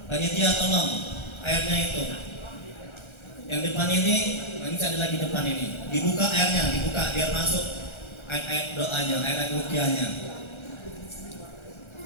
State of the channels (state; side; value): late; right; 1.3 ms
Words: Panitia tolong airnya itu. Yang depan ini ada lagi depan ini. Dibuka airnya, dibuka biar masuk air doanya, air ruqyahnya.